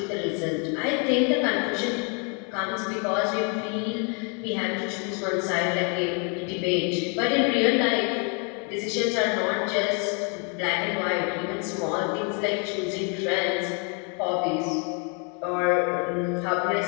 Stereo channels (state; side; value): quieter; right; 36.8 dB